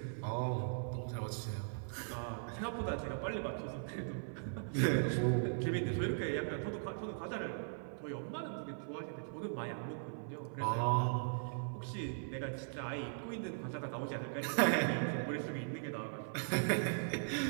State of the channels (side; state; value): left; silent; 52 dB below the other